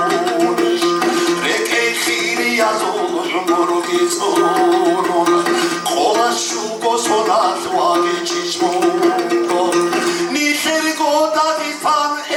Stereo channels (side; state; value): both; identical; correlation 1.00